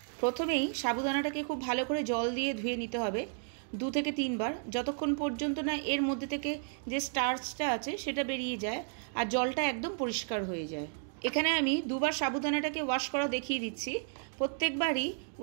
প্রথমেই সাবুদানাটাকে খুব ভালো করে জল দিয়ে ধুয়ে নিতে হবে 2 থেকে 3 বার, যতক্ষণ পর্যন্ত না এর মধ্যে থেকে যে স্টার্চটা আছে সেটা বেরিয়ে যায় আর জলটা একদম পরিষ্কার হয়ে যায়। এখানে আমি 2 বার সাবুদানাটাকে ওয়াশ করা দেখিয়ে দিচ্ছি। প্রত্যেকবারই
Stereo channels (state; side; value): silent; left; 56 dB below the other